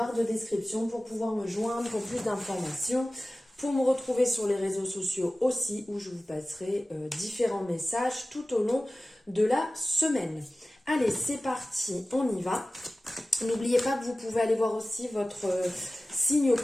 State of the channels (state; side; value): normal; both; correlation 0.97